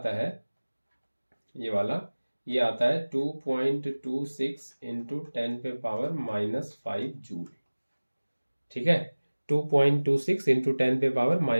है ये वाला, ये आता है 2.26 इंटू 10 पे पावर -5 जूल, ठीक है, 2.26 इंटू 10 पे पावर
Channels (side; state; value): both; inverted; correlation -1.00